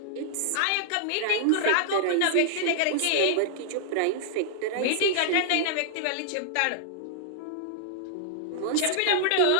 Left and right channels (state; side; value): different; both; correlation -0.01